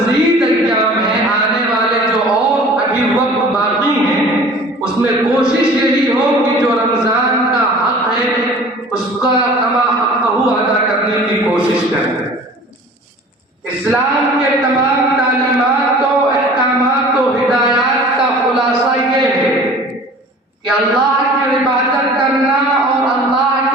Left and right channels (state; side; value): normal; both; correlation 0.45